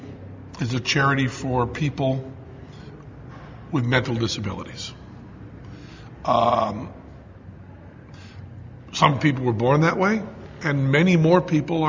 is a charity for people with mental disabilities. Some people were born that way, and many more people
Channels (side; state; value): both; identical; correlation 1.00